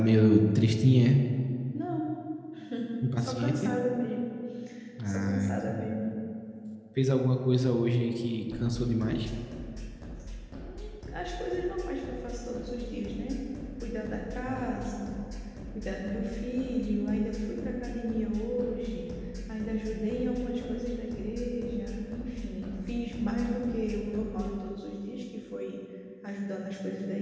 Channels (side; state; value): both; identical; correlation 1.00